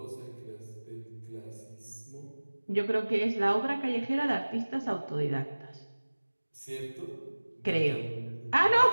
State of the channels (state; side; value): inverted; both; correlation -1.00